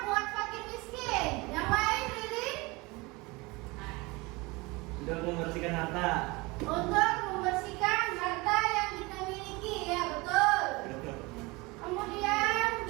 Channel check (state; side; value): quieter; left; 24.3 dB